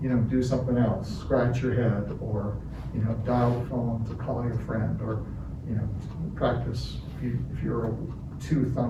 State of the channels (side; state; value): both; identical; correlation 1.00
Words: you know, do something else, scratch your head, or, you know, dial the phone to call your friend, or, you know, practice. If you're a